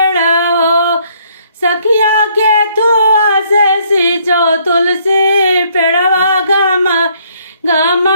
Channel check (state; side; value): inverted; both; correlation -0.66